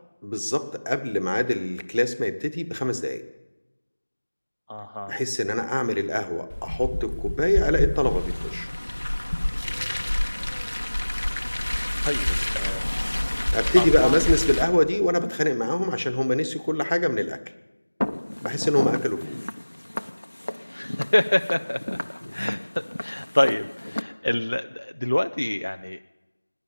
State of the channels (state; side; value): inverted; both; correlation -1.00